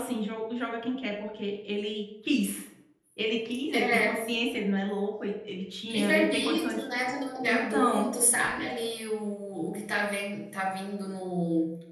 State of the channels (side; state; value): both; identical; correlation 1.00